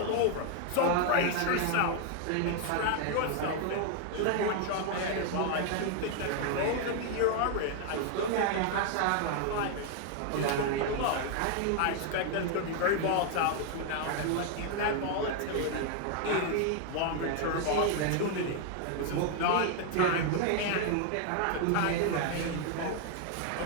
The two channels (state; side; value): different; both; correlation 0.00